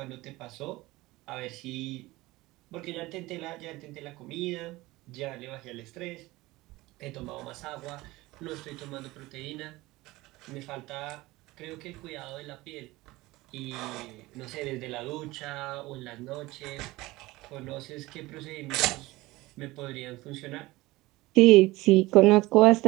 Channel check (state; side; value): quieter; left; 19.8 dB